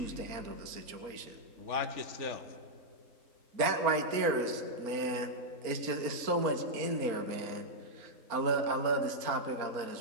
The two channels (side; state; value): left; late; 4.3 ms